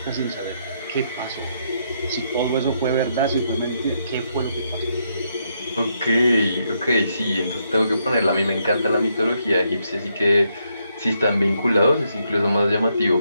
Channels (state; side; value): inverted; both; correlation -0.77